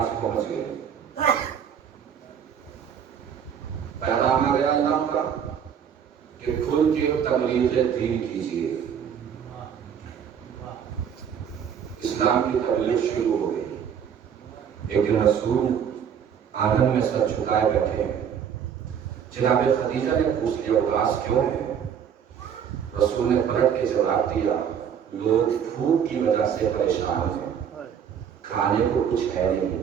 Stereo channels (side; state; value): left; quieter; 8.1 dB